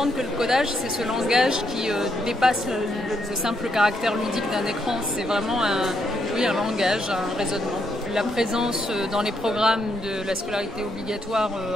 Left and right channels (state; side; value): normal; both; correlation 0.76